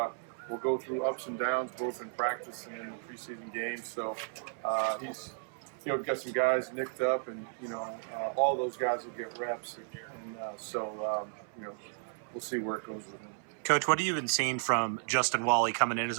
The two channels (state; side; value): silent; left; 55 dB below the other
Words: go through ups and downs, both in practice and in the preseason games. So he's, got some guys nicked up, and all those guys will get reps, and we'll see where it goes with him. Coach, what have you been seeing from Justin Walle coming in as